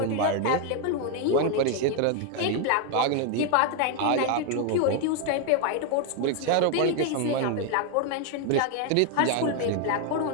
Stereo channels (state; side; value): different; both; correlation 0.01